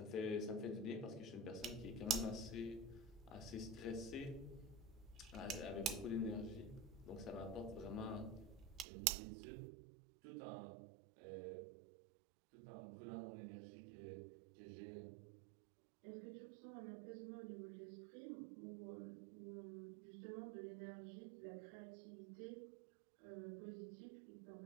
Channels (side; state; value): left; drops out; at 8.8 s